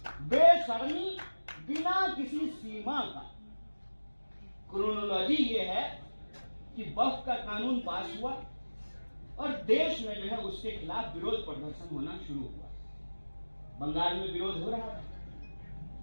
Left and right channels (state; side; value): inverted; both; correlation -1.00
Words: बेशर्मी, बिना किसी सीमा का। क्रोनोलॉजी ये है कि वक्फ का कानून पास हुआ और देश में जो है उसके खिलाफ विरोध प्रदर्शन होना शुरू हुआ। बंगाल में विरोध हो रहा